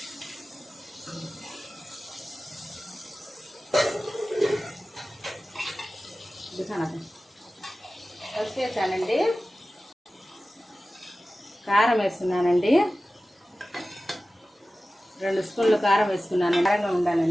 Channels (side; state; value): both; normal; correlation 0.96